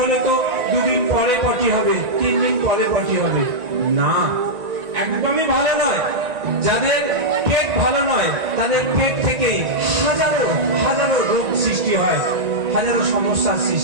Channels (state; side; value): late; left; 1.9 ms